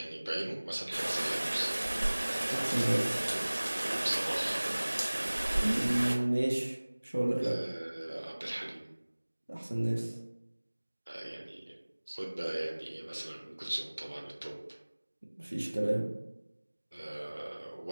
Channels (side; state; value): both; inverted; correlation -1.00